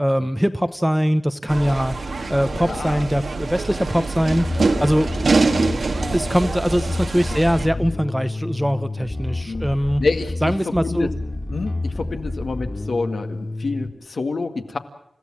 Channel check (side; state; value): both; normal; correlation 0.97